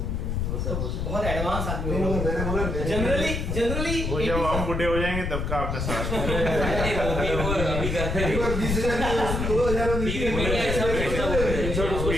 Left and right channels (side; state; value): left; noise; rumble, 2 dB below the sound